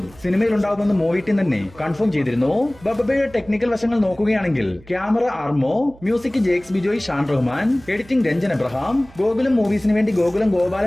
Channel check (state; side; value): noise; right; hum, 24 dB below the sound